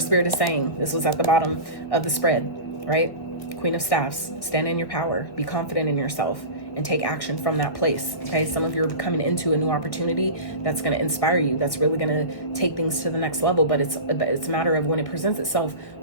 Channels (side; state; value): right; late; 2.0 ms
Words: is saying. This was at the bottom of the spread, right? Queen of Staffs, stand in your power, be confident in yourself, and take action from that place, okay? Some of you are coming into a new opportunity that's going to inspire you, that's really going to take things to the next level, but it's a matter of when it presents itself,